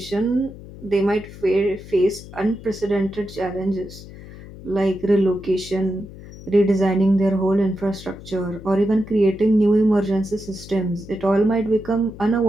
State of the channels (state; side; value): noise; left; hum, 16 dB below the sound